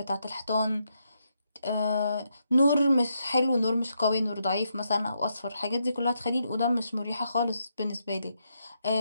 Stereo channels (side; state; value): both; inverted; correlation -0.80